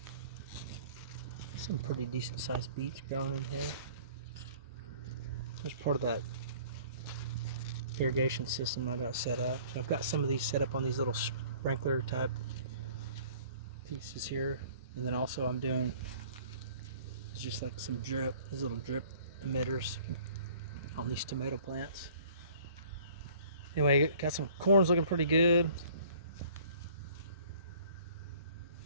some pretty decent sized beets growing in here. It's part of that irrigation system I got set up. So I've got some of these set up on these little sprinkler type pieces here, and then also I'm doing just like some drip, these little drip emitters on these tomato plants. Anyway, got some corns looking pretty good.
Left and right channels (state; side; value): inverted; both; correlation -0.52